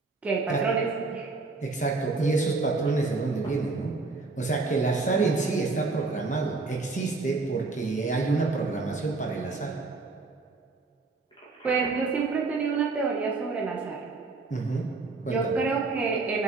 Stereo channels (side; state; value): left; quieter; 3.7 dB